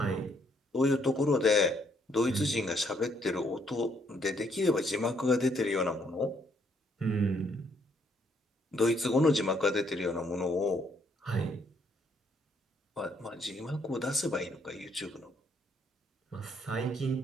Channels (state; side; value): normal; both; correlation 0.70